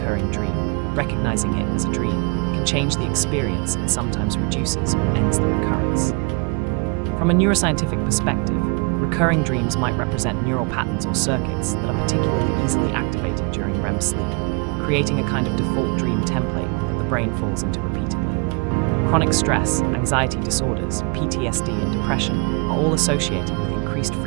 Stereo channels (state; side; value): quieter; left; 33.0 dB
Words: dream, recognizing it as a dream, can change the experience and sometimes reduces or ends the recurrence. From a neuroscientific perspective, recurring dreams might represent neural patterns or circuits that are particularly easily activated during REM sleep, creating a kind of default dream template that the brain falls into repeatedly. Chronic stress, anxiety disorders, PTSD, and depression are all associated with increased